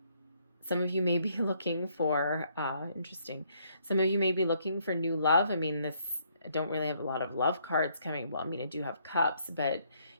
Some of you may be looking for, interesting, some of you may be looking for new love. I mean, I don't really have a lot of love cards coming. Well, I mean, I do have cups, but,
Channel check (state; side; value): inverted; both; correlation -0.69